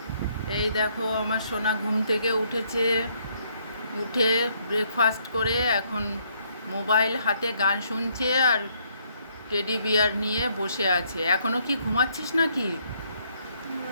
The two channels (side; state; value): both; inverted; correlation -0.70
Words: এই দেখো আমার সোনা ঘুম থেকে উঠেছে। উঠে ব্রেকফাস্ট করে এখন মোবাইল হাতে গান শুনছে আর টেডি বিয়ার নিয়ে বসে আছে। এখনো কি ঘুমাচ্ছিস নাকি?